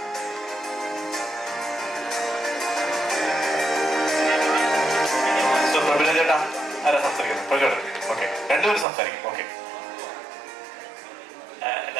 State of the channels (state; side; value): drops out; left; at 8.8 s